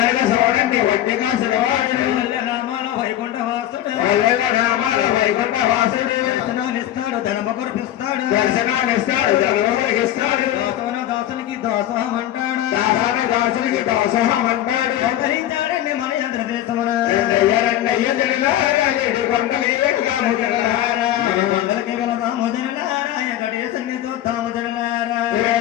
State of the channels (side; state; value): right; quieter; 12.8 dB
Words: చూడండి ఒట్టుగా సులవాడు నామాల వైకుంఠ వాసుడు నామాల వైకుంఠ వాసుడు దర్శనాలిస్తాడు ధనమ కురిపిస్తాడు దర్శనాలిస్తాడు ధనమ కురిపిస్తాడు దాసోన దాసునికి దాసోహం అంటాడు దాసోన దాసునికి దాసోహం అంటాడు అవతరించాడండి మన ఆంధ్రదేశమున రెండయ్య జనలారా ఏడు కొండలు ఏడుగాము జనలారా కొండలకి వెళదాము జనలారా వెంకటేశుని చూద్దాము జనలారా